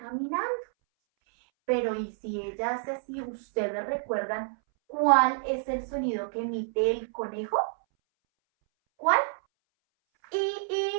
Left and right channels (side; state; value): left; silent; 59 dB below the other